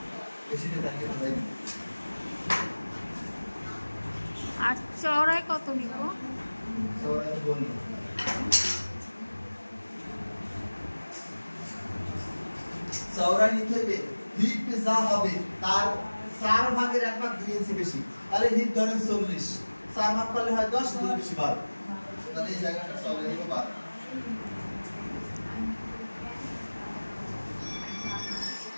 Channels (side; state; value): both; inverted; correlation -1.00